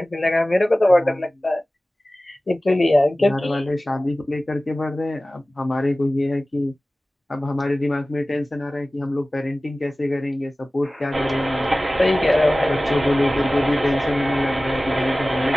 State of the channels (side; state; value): both; normal; correlation 0.97